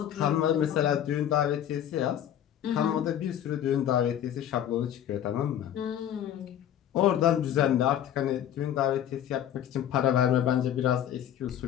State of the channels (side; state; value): right; quieter; 10.5 dB